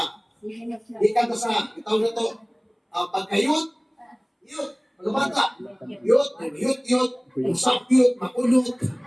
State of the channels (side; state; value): both; identical; correlation 1.00